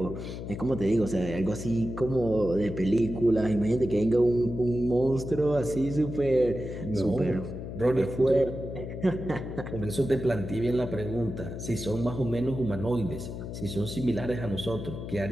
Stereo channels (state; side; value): noise; left; hum, 8 dB below the sound